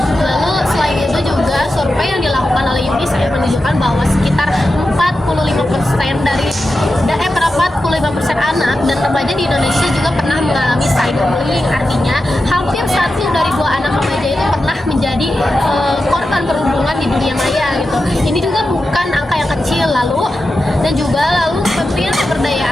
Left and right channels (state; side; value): normal; both; correlation 0.91